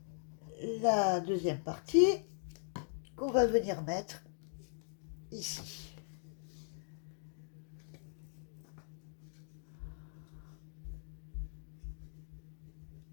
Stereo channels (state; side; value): silent; right; digital silence